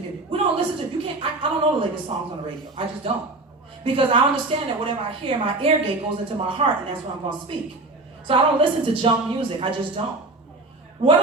music. We don't listen to, I don't know the latest songs on the radio. I just don't. Because I understand that whatever I hear, my ear gate goes into my heart, and that's what I'm going to speak. So I don't listen to junk music. I just don't. What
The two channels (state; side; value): quieter; left; 3.1 dB